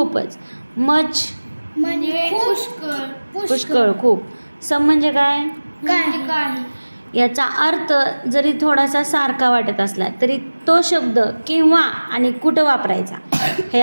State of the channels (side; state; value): both; inverted; correlation -1.00